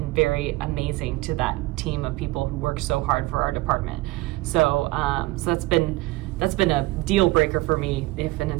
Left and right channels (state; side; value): quieter; left; 19.9 dB